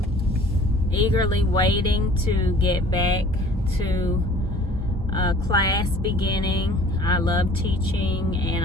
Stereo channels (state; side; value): normal; both; correlation 0.50